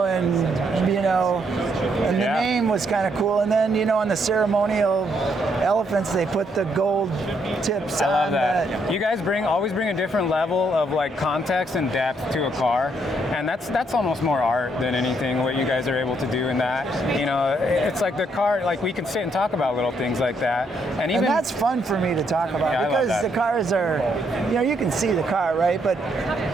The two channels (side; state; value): both; normal; correlation 0.73